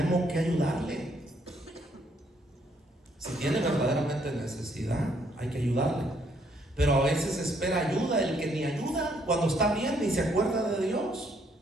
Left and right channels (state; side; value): normal; both; correlation 0.69